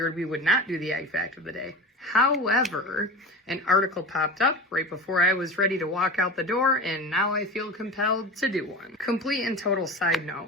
we would not do the ag fact of the day. However, an article popped up right before I was ready to walk out the door, and now I feel compelled to do one. Complete and total side note,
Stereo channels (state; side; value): normal; both; correlation 0.29